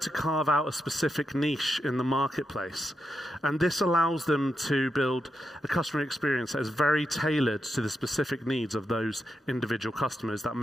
to carve out a specific niche in the marketplace, and this allows them to build a customer experience that is very tailored to the specific needs of those individual customers that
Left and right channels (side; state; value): both; normal; correlation 0.85